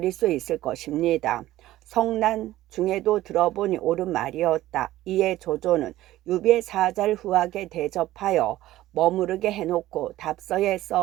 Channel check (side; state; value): left; quieter; 15.3 dB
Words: 수 있을 것입니다. 성난 중에도 들어보니 옳은 말이었다. 이에 조조는 유비의 사자를 후하게 대접하여 머무르게 해놓고 답서에